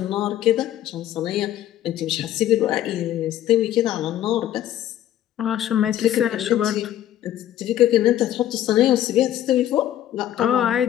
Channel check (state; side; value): quieter; right; 12.2 dB